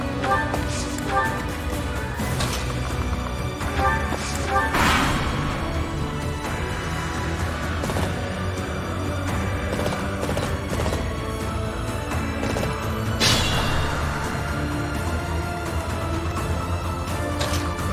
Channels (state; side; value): identical; both; correlation 1.00